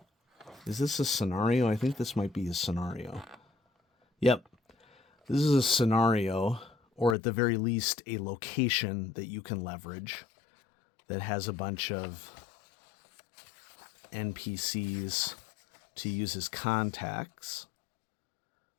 Is this a scenario? I think this might be a scenario. Yep. This is a scenario, or at the very least, a location that you can leverage that has a bunch of NPCs to use as contacts.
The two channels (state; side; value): drops out; right; at 7.2 s